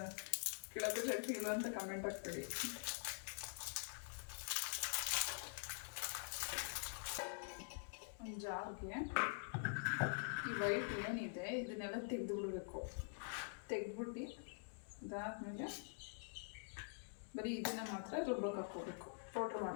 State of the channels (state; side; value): silent; right; digital silence